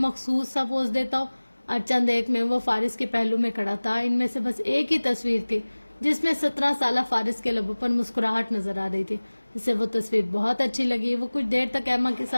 سا پوز دیتا ہو. اور چند ایک میں وہ فارس کے پہلو میں کھڑا تھا. ان میں سے بس ایک ہی تصویر تھی جس میں 17 سالہ فارس کے لبوں پر مسکراہٹ نظر آ رہی تھی. اسے وہ تصویر بہت اچھی لگی. وہ کچھ دیر تک ایما کے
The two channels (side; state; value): both; inverted; correlation -1.00